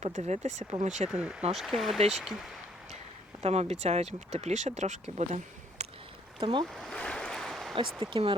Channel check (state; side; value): normal; both; correlation 0.65